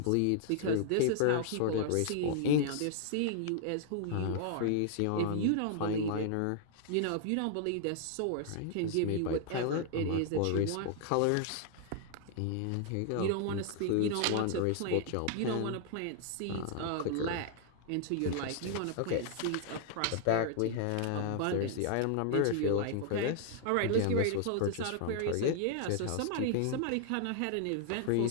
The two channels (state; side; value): different; both; correlation 0.00